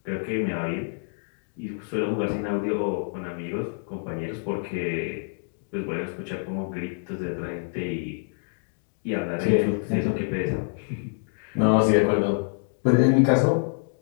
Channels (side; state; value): right; silent; digital silence